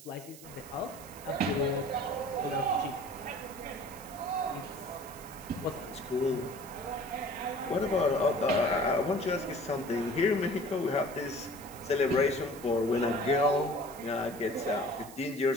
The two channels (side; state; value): right; noise; hiss, 17 dB below the sound